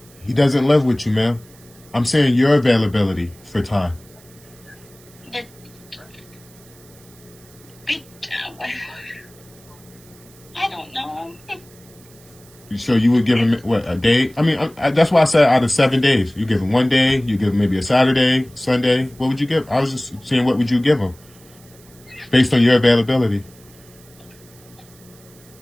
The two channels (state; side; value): noise; right; hiss, 26 dB below the sound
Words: He doesn't live with you, ma'am. I'm saying your availability for time. I don't know. So you would give him, what, a day? I mean, that's why I said out of 7 days. You give him 1 day, you give him maybe a Saturday, Sunday. What would you give? I was just saying, what would you give him based on your availability?